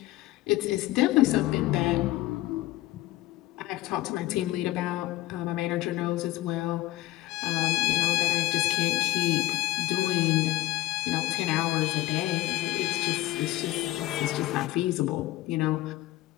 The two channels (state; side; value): quieter; right; 17.2 dB